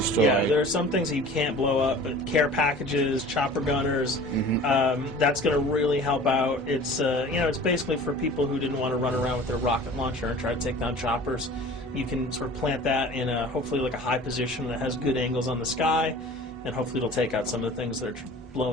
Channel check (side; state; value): both; normal; correlation 0.43